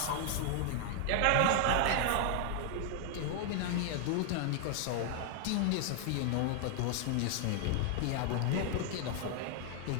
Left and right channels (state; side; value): different; both; correlation 0.00